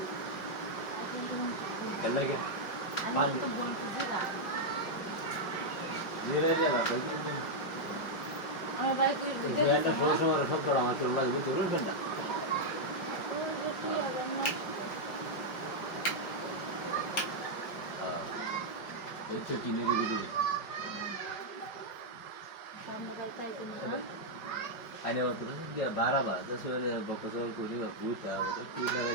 चल लगे धीरे धीरे बात এটা ষোলো সময় সপ্তাহ আমার চলে লাগবে তো রুফেন না হচ্ছে চিনের ভিতরে आने वाला तो क्या 12 बार 10 वाले बकचोल को नहीं भूत है वो तो लगा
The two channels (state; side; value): late; right; 5.2 ms